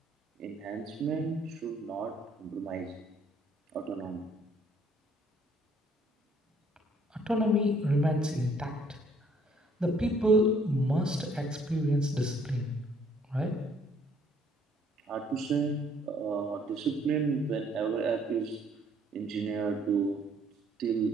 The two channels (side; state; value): both; normal; correlation 0.63